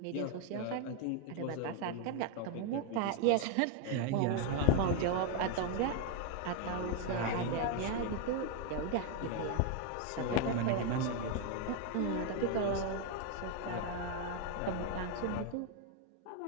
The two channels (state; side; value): different; both; correlation 0.01